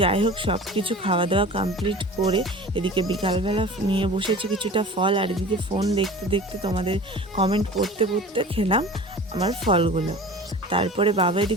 যাই হোক, সব কিছু খাওয়া দাওয়া কমপ্লিট করে এদিকে বিকালবেলা নিয়ে বসেছি কিছুটা ফল, আর এদিকে ফোন দেখতে দেখতে তোমাদের কমেন্ট পড়তে পড়তে খেলাম আমার ফলগুলো। তারপরে বাবা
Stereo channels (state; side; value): normal; both; correlation 0.39